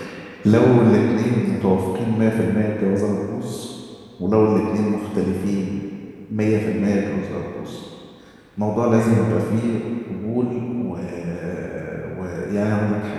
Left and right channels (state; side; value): identical; both; correlation 1.00